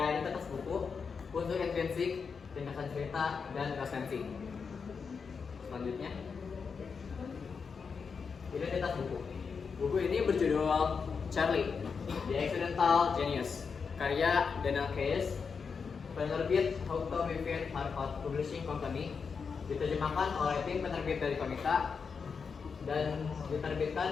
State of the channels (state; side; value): quieter; right; 5.6 dB